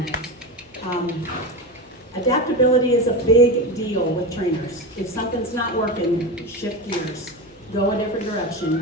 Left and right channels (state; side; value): normal; both; correlation 0.20